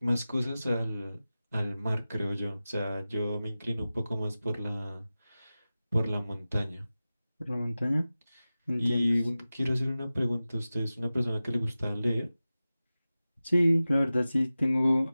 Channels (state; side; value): inverted; both; correlation -0.96